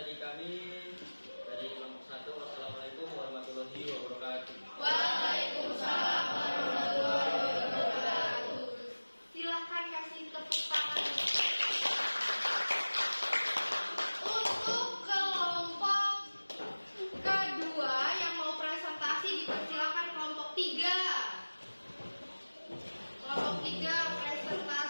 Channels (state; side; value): inverted; both; correlation -1.00